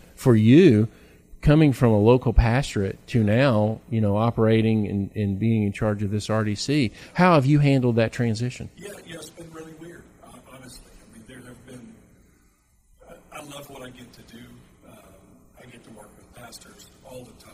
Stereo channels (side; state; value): both; identical; correlation 1.00